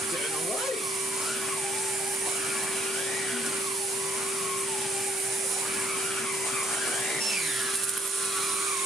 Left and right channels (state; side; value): normal; both; correlation 0.68